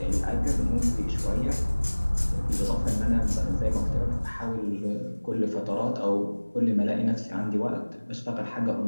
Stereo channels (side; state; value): both; inverted; correlation -1.00